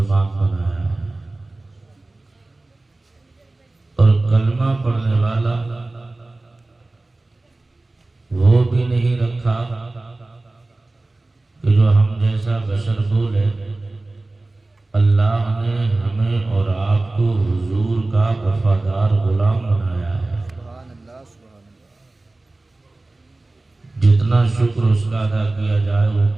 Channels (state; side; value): quieter; left; 3.0 dB